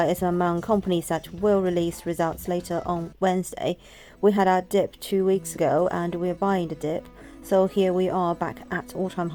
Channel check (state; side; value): identical; both; correlation 1.00